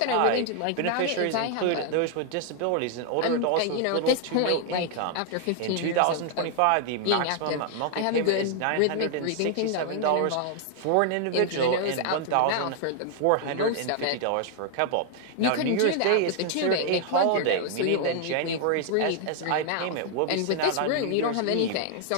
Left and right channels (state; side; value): different; both; correlation 0.00